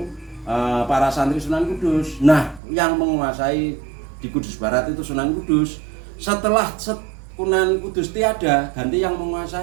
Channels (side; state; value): left; drops out; at 2.6 s